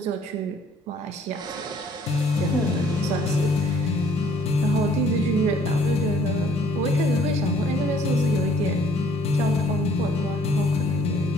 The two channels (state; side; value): normal; both; correlation 0.59